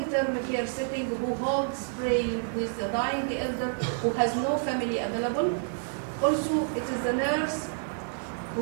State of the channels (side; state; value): left; silent; digital silence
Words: care setting, who holds praying with the dying elder who has no family available. Also, it is the nurse